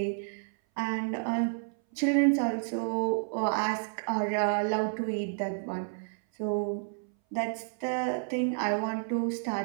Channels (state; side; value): silent; left; 58 dB below the other